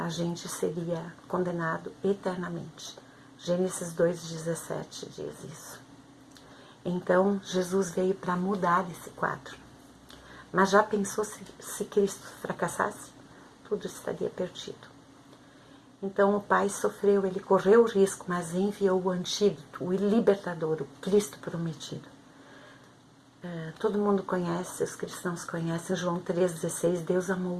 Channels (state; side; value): identical; both; correlation 1.00